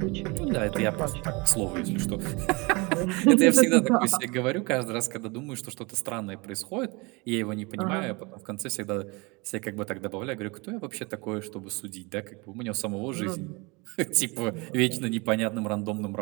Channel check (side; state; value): left; quieter; 27.2 dB